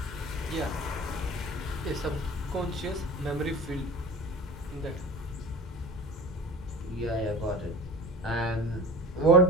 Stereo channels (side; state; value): both; normal; correlation 0.37